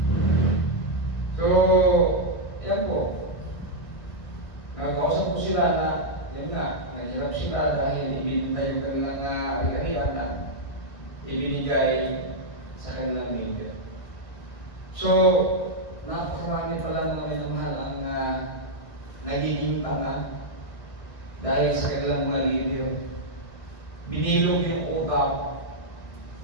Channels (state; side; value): late; right; 1.7 ms